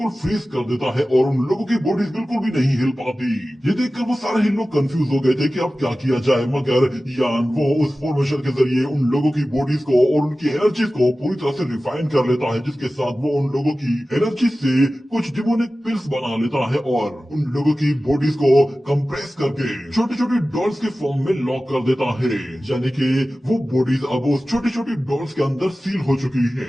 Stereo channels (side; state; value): both; normal; correlation 0.96